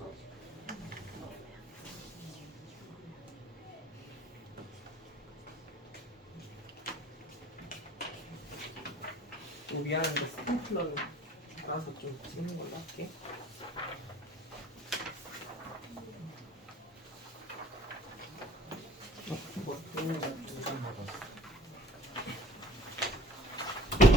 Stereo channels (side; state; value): both; normal; correlation 0.52